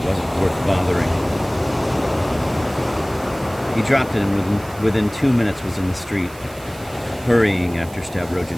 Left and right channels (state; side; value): noise; right; hiss, 21 dB below the sound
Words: wasn't worth bothering. He dropped it and within 2 minutes was in the street, hurrying after